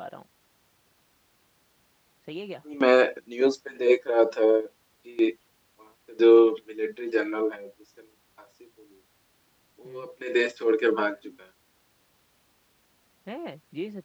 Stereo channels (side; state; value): both; identical; correlation 1.00